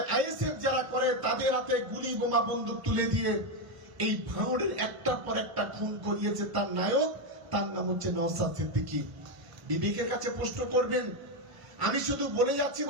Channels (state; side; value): late; left; 1.1 ms